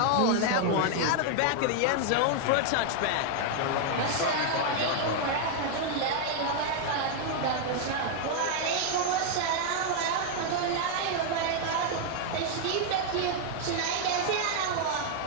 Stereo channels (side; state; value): both; different; correlation 0.00